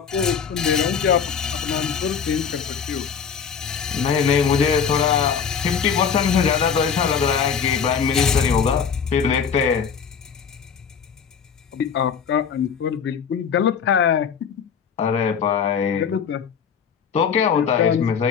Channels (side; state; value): right; quieter; 6.8 dB